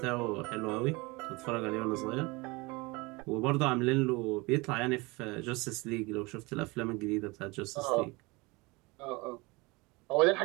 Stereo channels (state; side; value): quieter; left; 24.9 dB